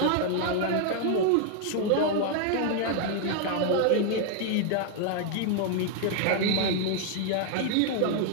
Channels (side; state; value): both; different; correlation 0.00